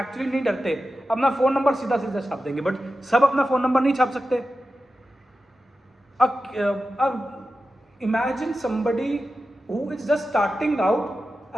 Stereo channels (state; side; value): normal; both; correlation 0.92